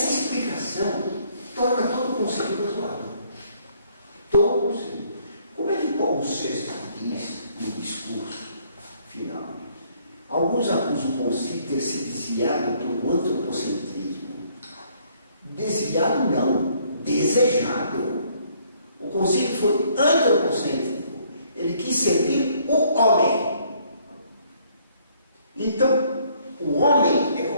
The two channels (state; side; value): inverted; both; correlation -0.65